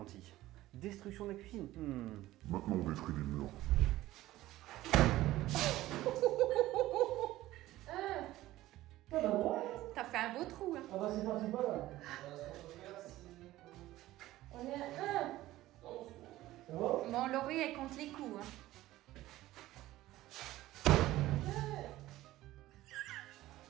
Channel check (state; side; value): quieter; left; 16.0 dB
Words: Destruction de la cuisine. Maintenant on détruit les murs. T'as fait un beau trou, hein. Ah bah c'est parti pas là. On est à 1. Ça va? Mon Laurie, elle compte les coups, hein.